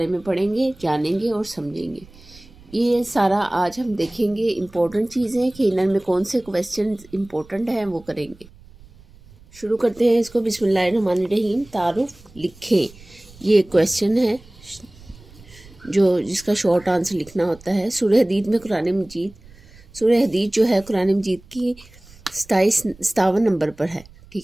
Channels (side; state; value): right; noise; rumble, 24 dB below the sound